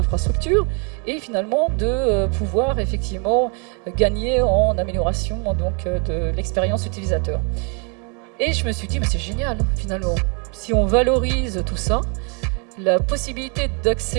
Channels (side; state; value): left; quieter; 36.5 dB